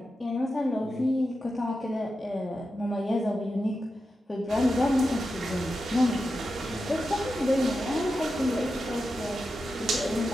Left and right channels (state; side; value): normal; both; correlation 0.90